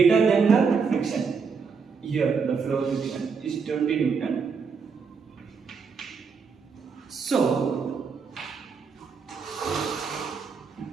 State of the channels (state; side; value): quieter; left; 5.5 dB